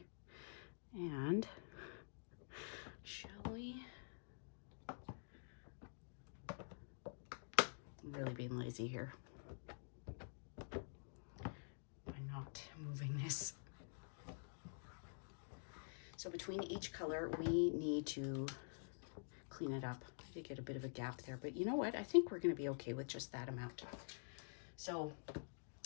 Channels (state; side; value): silent; right; digital silence